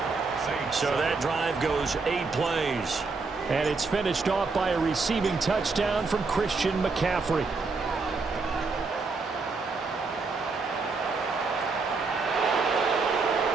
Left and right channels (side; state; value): left; quieter; 4.2 dB